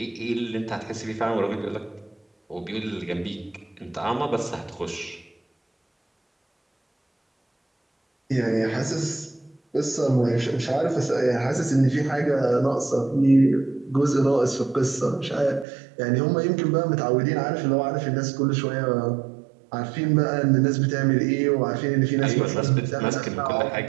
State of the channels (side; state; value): left; drops out; at 15.7 s